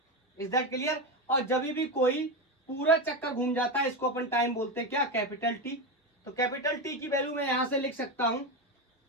Is that clear? और जब भी कोई पूरा चक्कर घूम जाता है इसको अपन टाइम बोलते हैं, क्या, कैपिटल T। तो कैपिटल T की वैल्यू मैं यहां से लिख सकता हूं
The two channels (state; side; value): normal; both; correlation 0.15